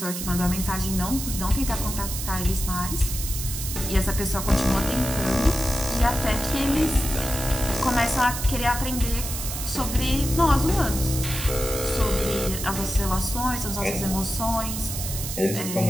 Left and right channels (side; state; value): right; noise; hiss, 6 dB below the sound